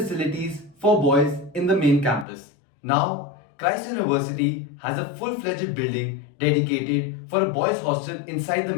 for boys in the main campus. Now, Christ University has a full-fledged building dedicated for a boys' hostel inside the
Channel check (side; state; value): right; drops out; at 2.2 s